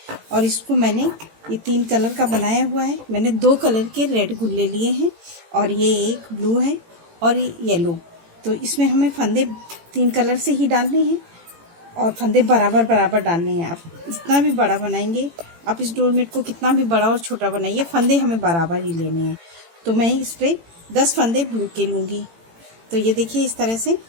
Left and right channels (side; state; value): left; late; 18 ms